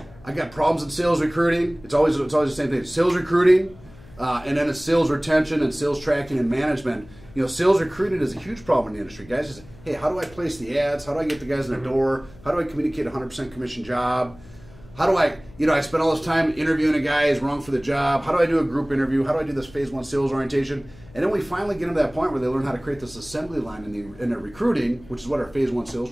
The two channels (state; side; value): noise; left; hum, 22 dB below the sound